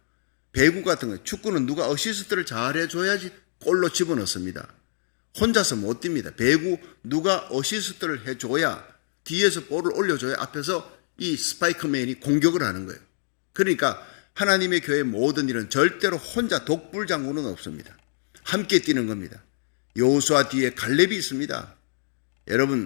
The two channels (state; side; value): silent; right; digital silence